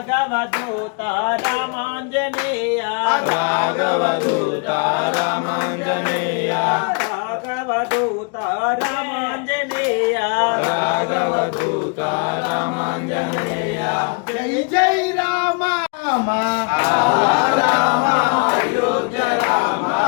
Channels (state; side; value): quieter; right; 35.5 dB